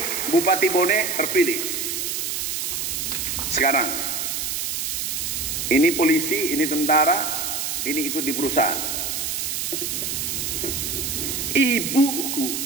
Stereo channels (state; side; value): noise; right; hiss, 2 dB below the sound